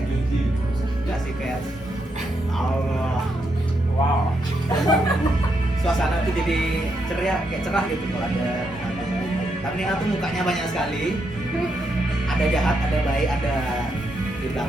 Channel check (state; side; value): normal; both; correlation 0.80